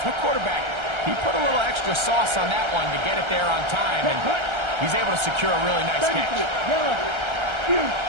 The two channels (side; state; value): left; late; 1.3 ms